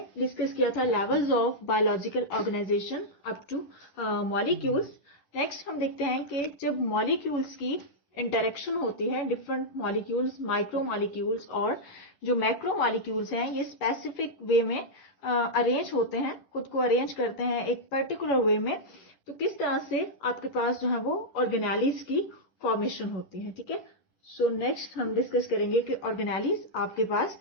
डिस्कस किया था levels of biological organization up to molecules. Next हम देखते हैं कि जब मॉलिक्यूल्स की इंटरेक्शन होती है, डिफरेंट मॉलिक्यूल्स, माइक्रो मॉलिक्यूल्स और जो मैक्रो मॉलिक्यूल्स हैं, ये स्पेसिफिक वे में अरेंज होते हैं, खुद को अरेंज करते हैं एक पर्टिकुलर वे में, तो किस तरह से आपके पास जो है वो ऑर्गेनेलिज की फॉर्मेशन होती है। ठीक है, सो नेक्स्ट हम डिस्कस करेंगे कि ऑर्गेनेलिज आपके पास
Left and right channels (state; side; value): late; right; 10 ms